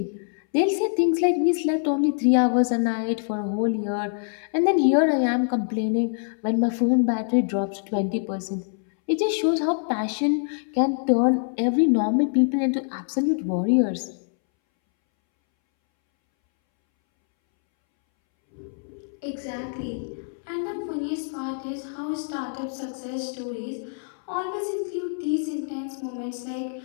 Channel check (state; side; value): silent; right; 62 dB below the other